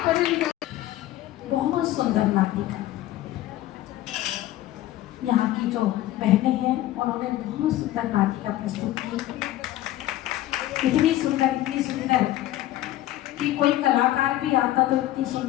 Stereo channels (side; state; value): right; quieter; 14.6 dB